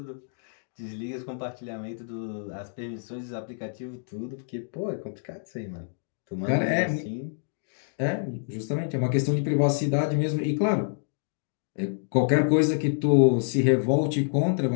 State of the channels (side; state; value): right; silent; digital silence